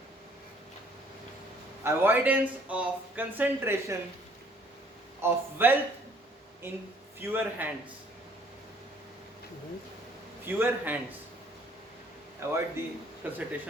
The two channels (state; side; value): normal; both; correlation 0.60